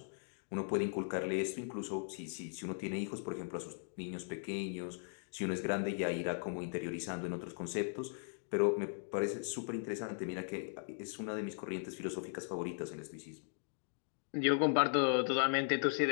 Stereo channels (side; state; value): right; silent; digital silence